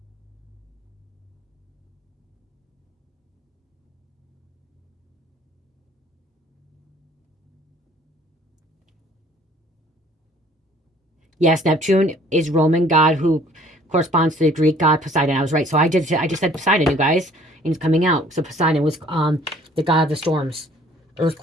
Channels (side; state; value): both; normal; correlation 0.56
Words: Yes, Neptune is Roman god who corresponds to the Greek god Poseidon. I was right. So I just said Poseidon, you guys. And it's coming out. So Poseidon was the god of the storms,